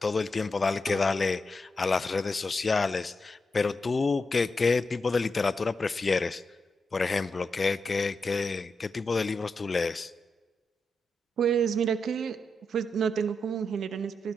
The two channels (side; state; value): both; normal; correlation 0.86